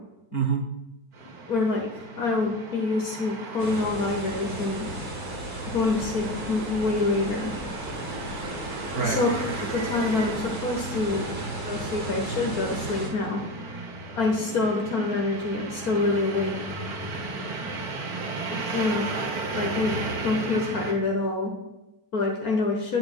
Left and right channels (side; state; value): right; late; 4.4 ms